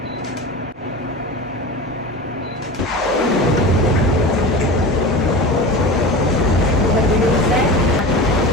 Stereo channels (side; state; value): both; normal; correlation 0.31